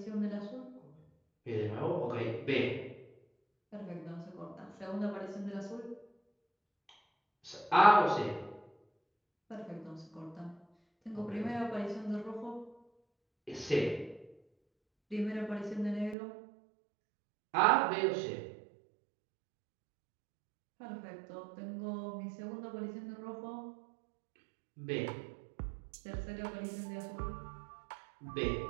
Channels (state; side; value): drops out; left; at 16.2 s